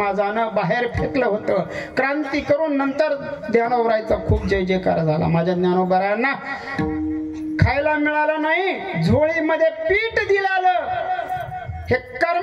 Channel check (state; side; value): identical; both; correlation 1.00